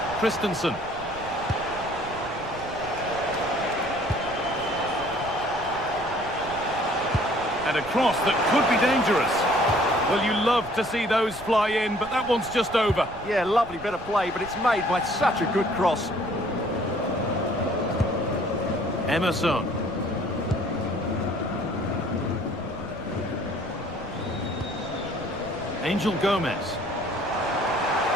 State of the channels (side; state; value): right; noise; rumble, 17 dB below the sound